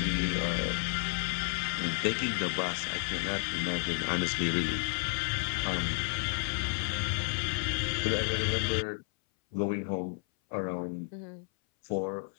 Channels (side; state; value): right; silent; 57 dB below the other